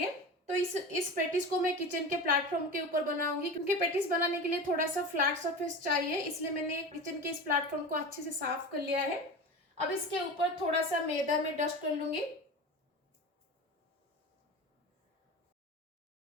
तो इस पेटिस को मैं किचन के प्लेटफॉर्म के ऊपर बनाऊंगी, क्योंकि पेटिस बनाने के लिए थोड़ा सा फ्लैट सरफेस चाहिए। इसलिए मैंने किचन के इस प्लेटफॉर्म को अच्छे से साफ कर लिया है। अब इसके ऊपर थोड़ा सा मैदा में डस्ट कर लूंगी।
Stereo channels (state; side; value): normal; both; correlation 0.29